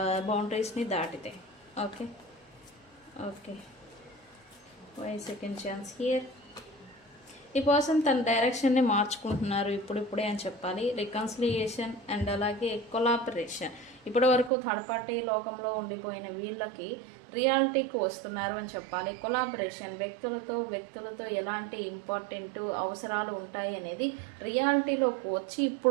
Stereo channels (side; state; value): left; drops out; at 14.5 s